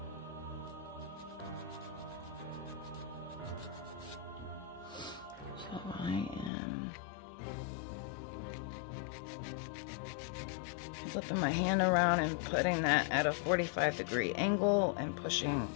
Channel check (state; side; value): drops out; right; at 6.5 s